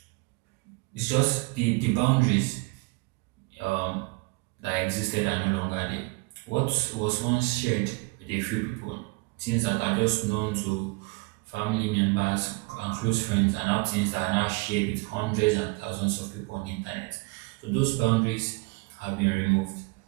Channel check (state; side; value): quieter; left; 27.5 dB